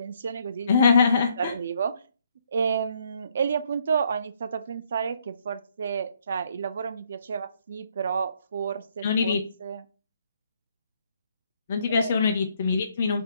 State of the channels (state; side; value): inverted; both; correlation -0.69